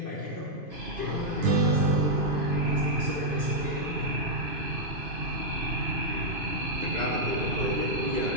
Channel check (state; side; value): late; left; 2.5 ms